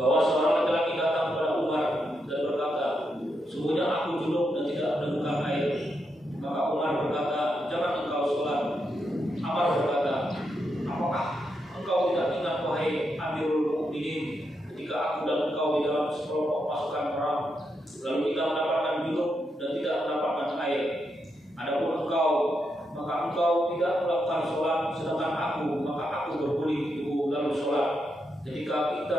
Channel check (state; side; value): normal; both; correlation 0.83